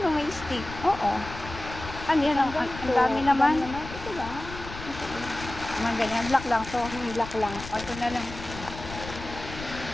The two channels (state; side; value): noise; left; rumble, 12 dB below the sound